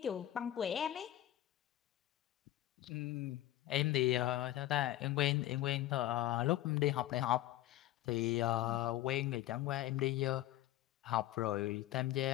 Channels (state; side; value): quieter; right; 14.3 dB